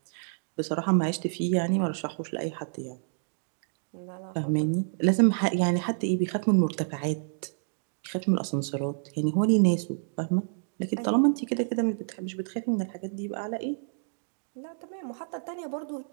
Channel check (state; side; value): silent; left; digital silence